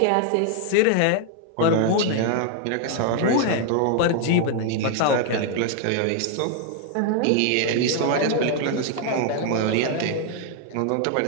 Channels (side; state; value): both; different; correlation 0.00